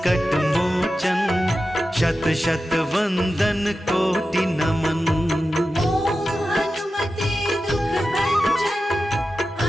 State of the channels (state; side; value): normal; both; correlation 0.92